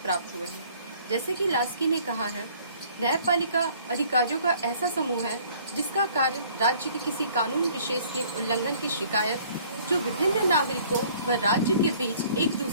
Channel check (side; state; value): both; inverted; correlation -0.56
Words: हुए हैं। जैसे कि लास्की ने कहा है, न्यायपालिका अधिकारियों का ऐसा समूह है जिसका कार्य राज्य के किसी कानून विशेष के उल्लंघन की शिकायत जो विभिन्न नागरिकों व राज्य के बीच एक